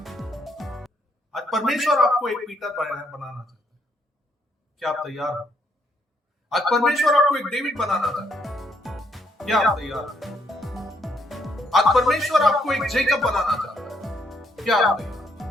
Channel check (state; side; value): normal; both; correlation 0.72